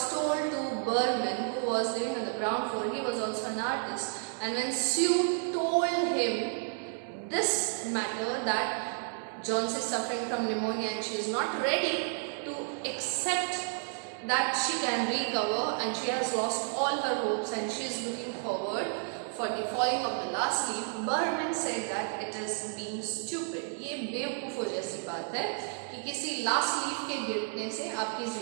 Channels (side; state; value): left; silent; 57 dB below the other